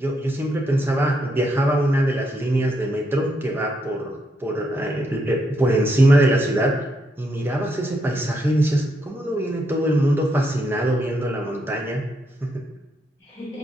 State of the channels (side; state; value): both; normal; correlation 0.78